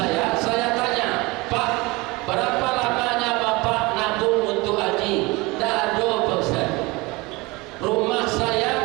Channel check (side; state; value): left; quieter; 23.4 dB